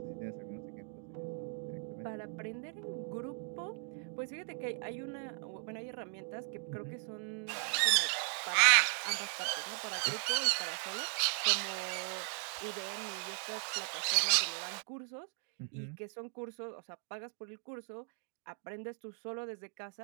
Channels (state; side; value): silent; left; 53 dB below the other